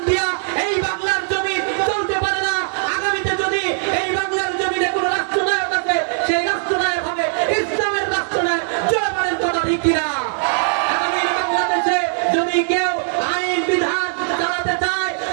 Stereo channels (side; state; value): left; silent; 66 dB below the other